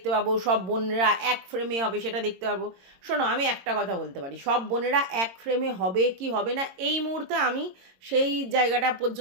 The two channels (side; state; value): left; late; 22 ms